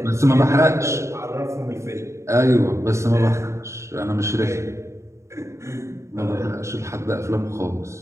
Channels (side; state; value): left; late; 0.14 ms